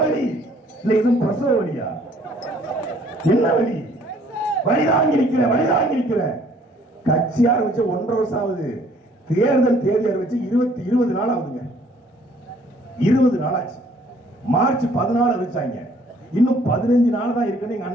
வலி? இல்ல இது பிரசவ வலியா? என்ன வலி? வழிதாங்கி நிற்கிற கட்சி ஆரம்பிச்ச 1.5 வருஷம் ஆகுது. தேர்தல் தேதி அறிவிச்சு 20 நாள் ஆகுதுங்க. 20 நாள் ஆச்சு. மார்ச் 14 அறிவிச்சாங்க. இன்னும் 15 நாள் தான் இருக்குன்னு எங்க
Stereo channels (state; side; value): normal; both; correlation 0.60